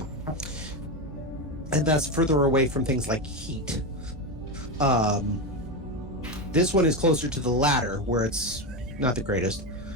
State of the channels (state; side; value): normal; both; correlation 0.14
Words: And that's further away from things like heat. This one is closer to the latter, where it's not the greatest.